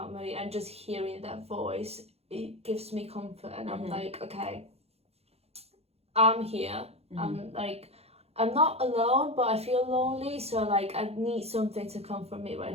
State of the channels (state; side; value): late; left; 0.30 ms